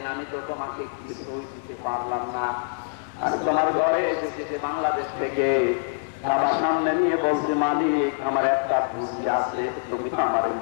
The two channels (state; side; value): silent; right; digital silence